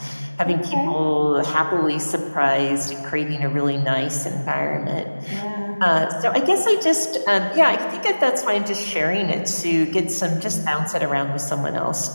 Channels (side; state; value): both; inverted; correlation -1.00